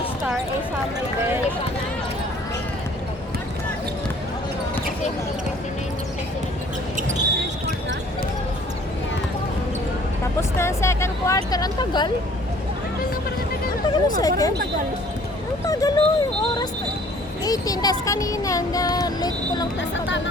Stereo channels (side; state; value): both; normal; correlation 0.55